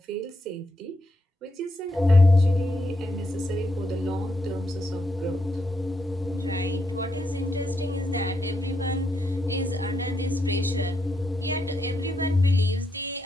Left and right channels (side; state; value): both; normal; correlation 0.81